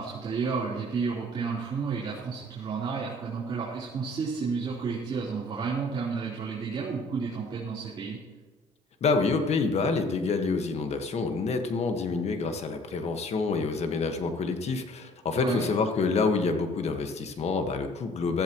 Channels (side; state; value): both; normal; correlation 0.54